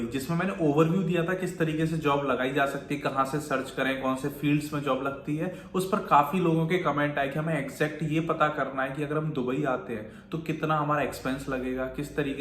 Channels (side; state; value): both; identical; correlation 1.00